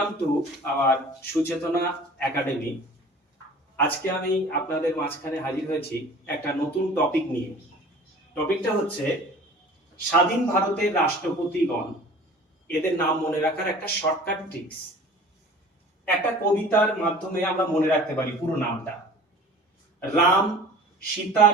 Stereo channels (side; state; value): both; normal; correlation 0.44